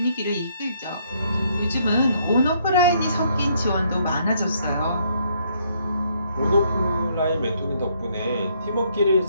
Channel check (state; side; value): inverted; both; correlation -0.69